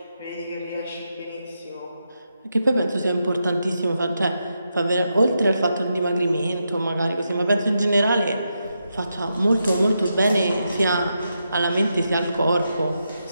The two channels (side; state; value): both; inverted; correlation -0.85